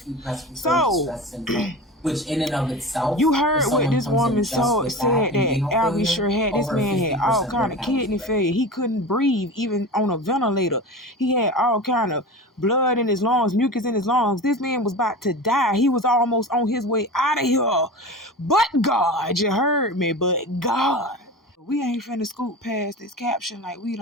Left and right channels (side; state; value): both; normal; correlation 0.31